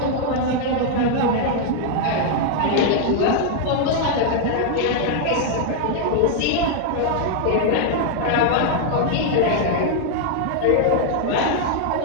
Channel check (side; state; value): both; different; correlation 0.00